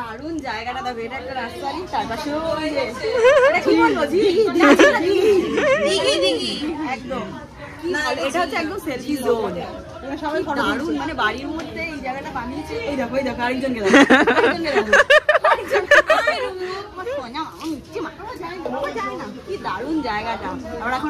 জায়গাটা, দেখো, এটা একটা রাস্তা, তার পাশেও একদম, এটা হচ্ছে একদম সেলফি জোন। সবাই দারুণ, মানে বাড়ির মধ্যে এই জায়গাটা বানিয়েছে। এই দেখো, এই দেখো, আরেকজনকে দেখো, কি দারুণ জায়গাটা। আমরা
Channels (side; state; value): both; identical; correlation 1.00